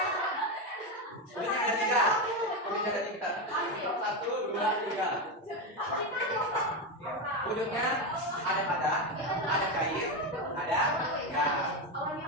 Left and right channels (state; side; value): normal; both; correlation 0.12